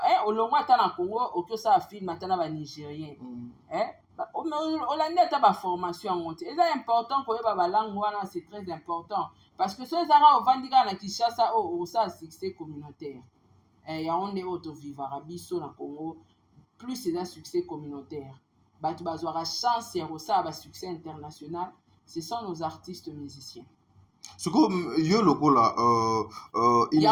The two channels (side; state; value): both; identical; correlation 1.00